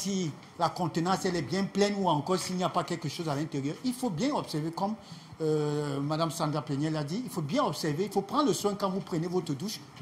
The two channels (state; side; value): identical; both; correlation 1.00